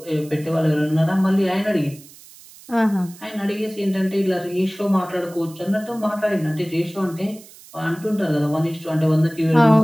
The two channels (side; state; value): right; noise; hiss, 21 dB below the sound